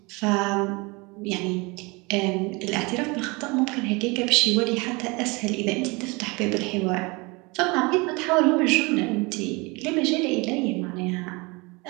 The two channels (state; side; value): quieter; left; 26.5 dB